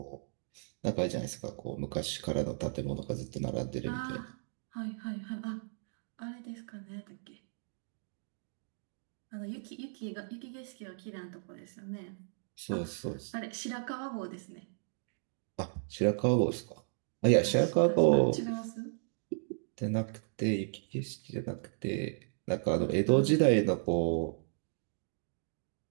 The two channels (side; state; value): left; silent; digital silence